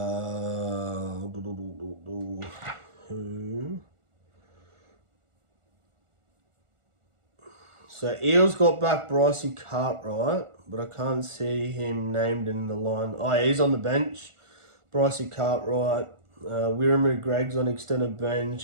Who? So Eels got back Brycey Cartwright, but I can't see him named in the line. Oh, yeah, he's on the bench. Brycey Cartwright. Wiramu Gregg's on extended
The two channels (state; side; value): late; left; 1.4 ms